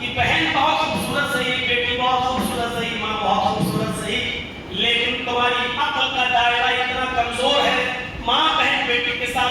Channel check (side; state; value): both; identical; correlation 1.00